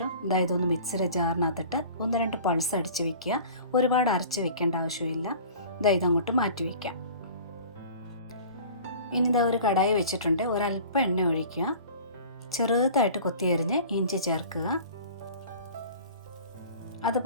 ഇതൊന്ന് മിക്സിയുടെ ജാറിനകത്തിട്ട് 1-2 പൾസ് അടിച്ച് വയ്ക്കുക. ഒരുപാട് അരച്ച് വെക്കേണ്ട ആവശ്യമില്ല. ഇതങ്ങോട്ട് മാറ്റി വയ്ക്കാം. ഇനി ഒരു കടായി വെച്ചിട്ടുണ്ട്. ഒരല്പം എണ്ണ ഒഴിക്കുക. ചെറുതായിട്ട് കൊത്തിയരിഞ്ഞ് ഇഞ്ചി ചേർക്കുക.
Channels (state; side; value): inverted; both; correlation -0.43